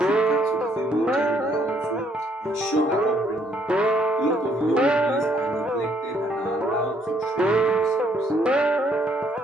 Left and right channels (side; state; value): both; normal; correlation 0.68